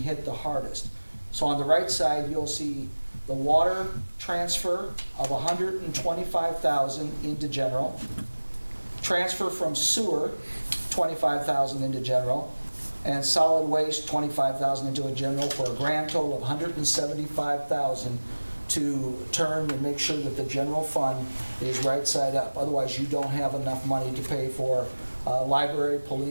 the hardest. So on the right side, you'll see the water transfer of $125,000 into general, transfer from sewer, $25,000 into general, and solid waste, $25,000 into a general, for a grand total of $175,000 to turn and make sure that the general fund is right side up. Otherwise, you don't have enough money to pay for library,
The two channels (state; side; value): inverted; both; correlation -1.00